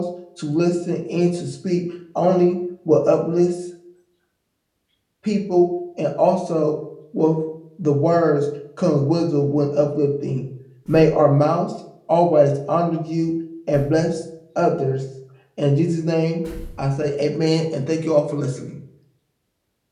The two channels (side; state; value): both; identical; correlation 1.00